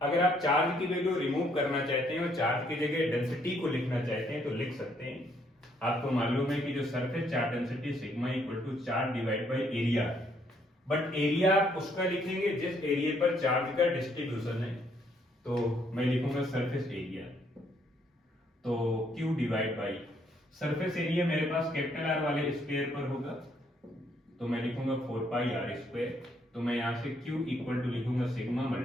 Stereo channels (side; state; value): both; normal; correlation 0.69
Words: अगर आप चार्ज की वैल्यू रिमूव करना चाहते हैं और चार्ज की जगह डेंसिटी को लिखना चाहते हैं तो लिख सकते हैं। आपको मालूम है कि जो surface charge density sigma equal to charge divide by area, but area आप उसका लिखेंगे जिस एरिया पर चार्ज का डिस्ट्रीब्यूशन है। तो मैं लिखूंगा सरफेस एरिया, तो Q divide by surface area मेरे पास कैपिटल आर वाले स्क्वायर पर होगा तो मैं लिखूंगा 4 पाई आर स्क्वायर। तो मैं यहां से Q इक्वल टू लिखूंगा sigma